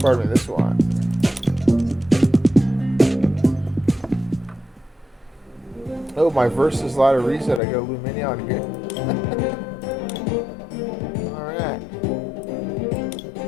Pardon me, this one. Oh, my versus ladder reset. I got a Lumineon here. Alright.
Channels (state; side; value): drops out; right; at 7.6 s